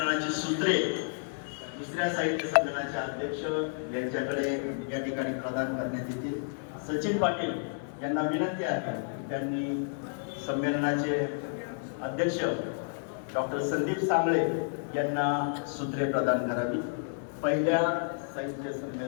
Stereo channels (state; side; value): silent; right; digital silence